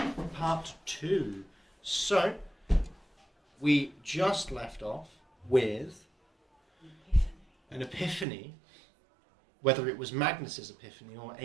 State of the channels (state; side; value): drops out; left; at 8.2 s